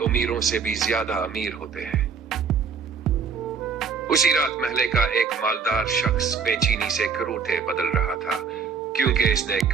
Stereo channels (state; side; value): quieter; left; 5.9 dB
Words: سے بھی زیادہ امیر ہوتے ہیں۔ اسی رات محلے کا ایک مالدار شخص بے چینی سے کروٹے بدل رہا تھا، کیونکہ اس نے